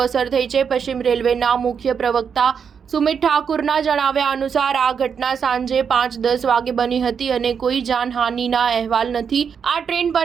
અસર થઈ છે. પશ્ચિમ રેલવેના મુખ્ય પ્રવક્તા સુમિત ઠાકુરના જણાવ્યા અનુસાર આ ઘટના સાંજે 5:10 વાગે બની હતી અને કોઈ જાનહાનિના અહેવાલ નથી. આ ટ્રેન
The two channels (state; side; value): quieter; left; 6.8 dB